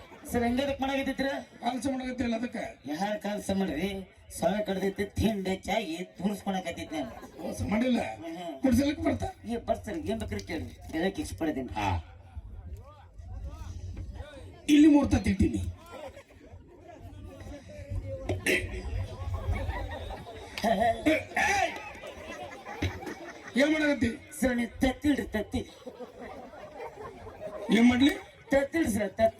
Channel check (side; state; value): both; identical; correlation 1.00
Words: ಸರ್ ಹೆಂಗದಕ್ ಮಾಡಾಕತ್ತಿದ್ರ? ಕೆಲಸ ಮಾಡಕತ್ತಿಲ್ಲ ಅದಕ್ಕೆ. ಯಾರ ಕೆಲಸ ಮಾಡ್ರಿ, ಸೊಳ ಕಡ್ದೈತಿ, ತಿಂಡಿ ಚಾಗಿ ತೂರಿಸ್ಕೊಳಕತ್ತಿದ್ ನಾನು. ಕೆಲಸ ಮಾಡಿಲ್ಲ, ಕುಡ್ಸಲಕ್ಕೆ ಬರ್ತಾ. ಏ ಬರ್ಸರ್ ಏನ್ ಬೇಕ್ರಿ ಕೇಳಿ, ಹೇಳಕ್ ಇಷ್ಟಪಡ್ತೀನಿ. ಇಲ್ಲಿ 3 ತತ್ತಿ ಇಟ್ಟಿನಿ. ಏನ್ ಮಾಡಕತ್ತಿ? ಸರ್ ನೀವು ತತ್ತಿಡ್ರಿ, ತತ್ತಿ ಏನ್ ಮಾಡ್ಲಿ? ತತ್ತಿಡ್ರಿ ಸರ್,